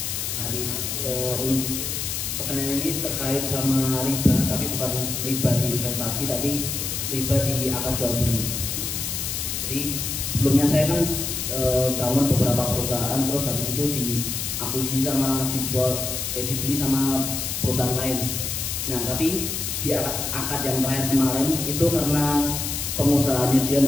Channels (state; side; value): noise; left; hiss, 3 dB below the sound